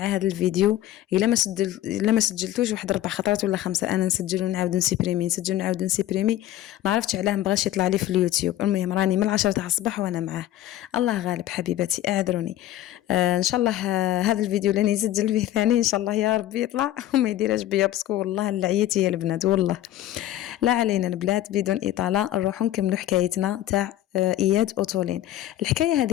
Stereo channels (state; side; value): quieter; right; 13.5 dB